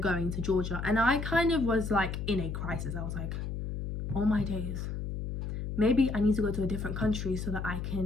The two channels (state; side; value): noise; left; hum, 4 dB below the sound